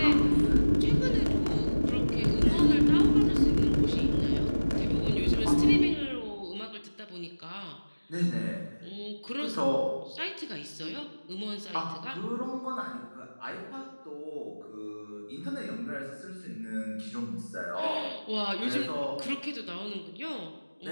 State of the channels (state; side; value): inverted; both; correlation -1.00